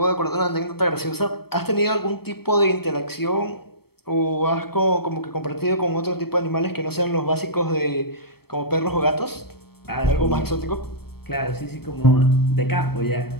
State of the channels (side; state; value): right; late; 0.96 ms